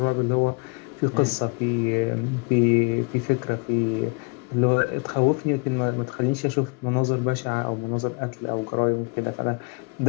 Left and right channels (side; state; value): right; quieter; 31.2 dB